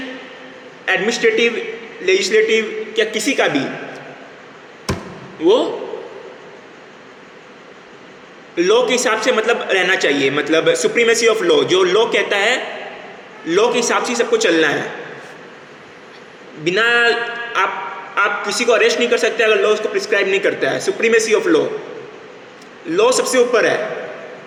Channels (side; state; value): both; identical; correlation 1.00